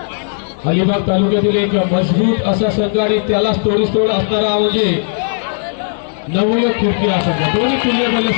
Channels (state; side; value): silent; right; digital silence